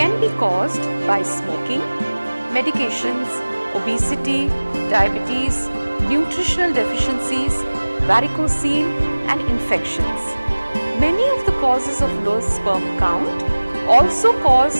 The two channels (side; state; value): both; inverted; correlation -1.00